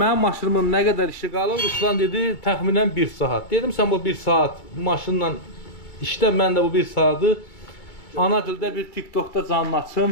maşınımın nə qədər işi qalır? Ruslan dedi, təxminən 1 saat. Dedim, sən bu 1 saat maşınla işlə, mən də bu 1 saatı ana dildə bir TikTokda canlı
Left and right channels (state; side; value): late; right; 2.2 ms